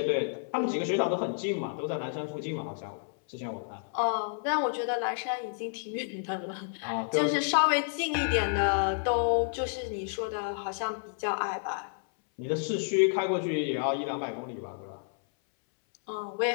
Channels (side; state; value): right; silent; 58 dB below the other